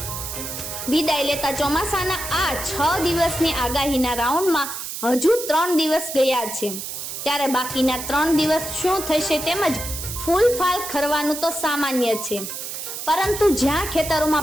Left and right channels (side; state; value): right; noise; hiss, 7 dB below the sound